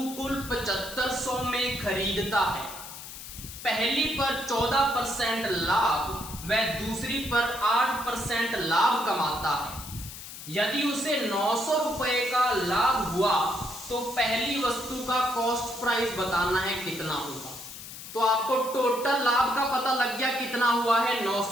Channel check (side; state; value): left; noise; hiss, 12 dB below the sound